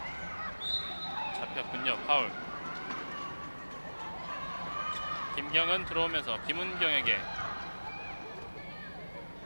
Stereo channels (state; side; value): inverted; both; correlation -1.00